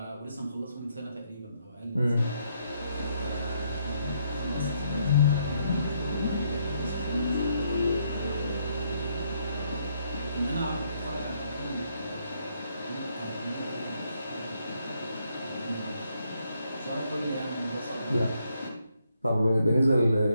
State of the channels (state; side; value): inverted; both; correlation -0.74